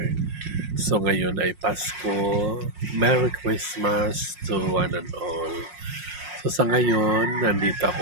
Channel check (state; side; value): late; left; 5.5 ms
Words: So ngayon ay Pasko. Merry Christmas to one and all. So sa ngayon, nandito